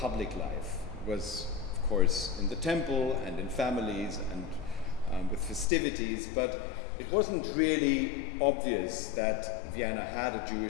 life. It was, of course, in the temple and in families and with festivities, but it wasn't really obvious that Vienna had a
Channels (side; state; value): right; drops out; at 5.7 s